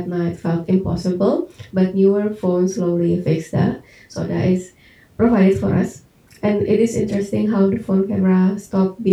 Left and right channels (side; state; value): both; identical; correlation 1.00